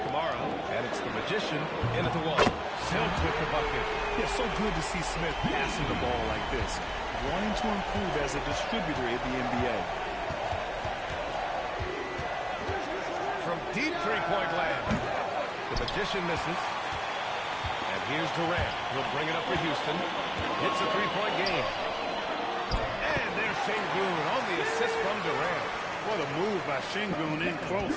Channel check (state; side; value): identical; both; correlation 1.00